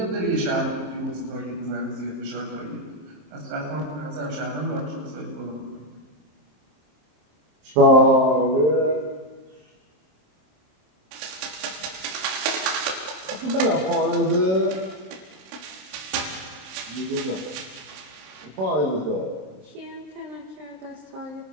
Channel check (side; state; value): left; late; 27 ms